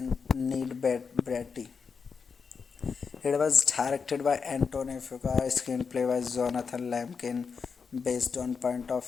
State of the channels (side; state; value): right; quieter; 5.6 dB